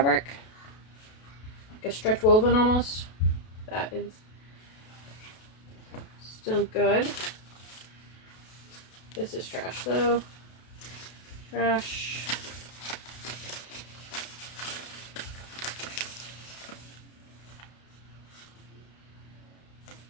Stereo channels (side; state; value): right; late; 32 ms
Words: Like a stretch woven almost. That is still good. This is trash though. Trash.